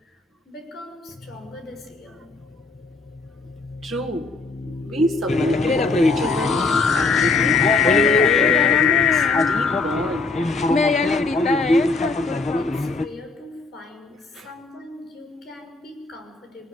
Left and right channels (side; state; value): right; quieter; 3.8 dB